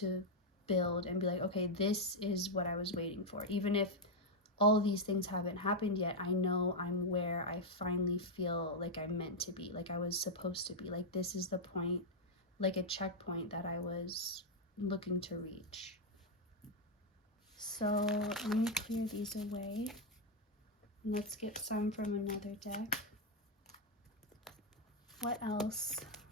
build and be like, okay, this is what I was waiting for. Even if all of these things haven't happened yet, I know I'm where I finally feel like I'm meant to be, like I was supposed to be. Like this is the point, like a checkpoint that I was looking to reach. So let me clear these away. Let's get some from another deck. What else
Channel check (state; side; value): normal; both; correlation 0.00